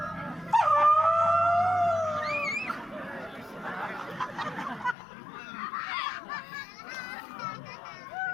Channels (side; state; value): right; drops out; at 5.0 s